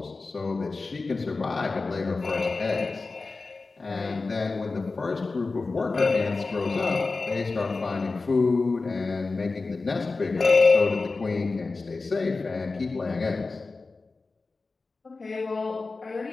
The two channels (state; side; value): quieter; right; 3.8 dB